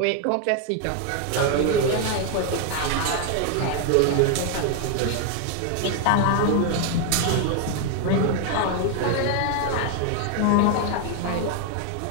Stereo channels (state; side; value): different; both; correlation 0.01